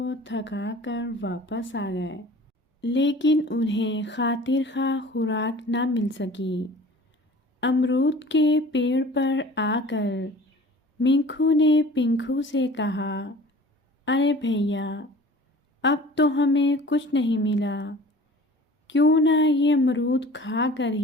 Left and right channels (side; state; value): both; normal; correlation 0.45